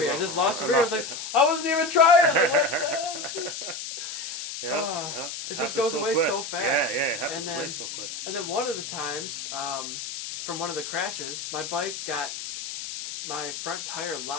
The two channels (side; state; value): left; noise; hiss, 7 dB below the sound